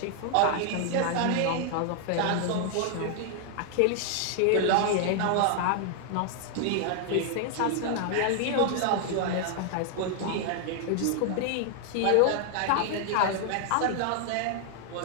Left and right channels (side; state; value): both; different; correlation 0.00